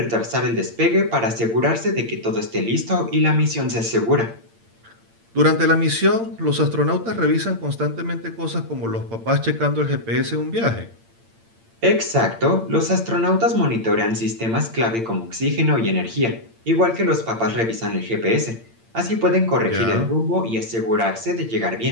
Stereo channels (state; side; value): late; left; 8.8 ms